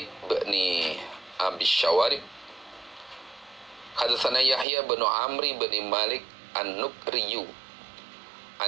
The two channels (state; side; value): drops out; left; at 4.7 s